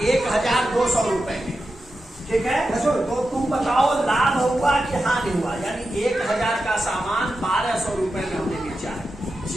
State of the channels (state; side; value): normal; both; correlation 0.90